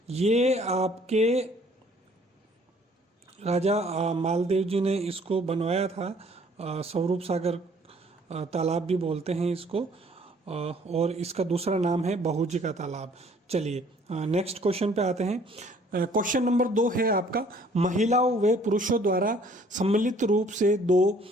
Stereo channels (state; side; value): normal; both; correlation 0.58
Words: ये आपके राजा मालदेव जी ने इसको बनवाया था। स्वरूप सागर तालाब भी बोलते हैं इसको, और इसका दूसरा नाम है बहू जी का तालाब। चलिए नेक्स्ट क्वेश्चन पे आते हैं। क्वेश्चन नंबर 2 है आपका, महिलाओं व पुरुषों द्वारा सम्मिलित रूप से 2